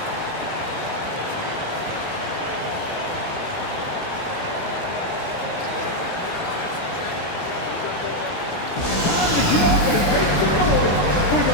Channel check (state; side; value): late; right; 17 ms